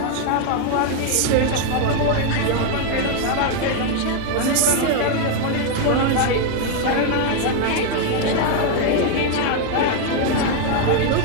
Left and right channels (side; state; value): both; different; correlation 0.01